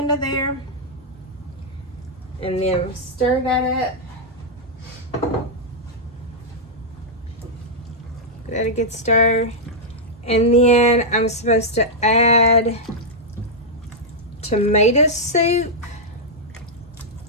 there, and then stir that up. Give that a good stir. And then I'm supposed to add tomato soup.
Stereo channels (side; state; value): both; normal; correlation -0.06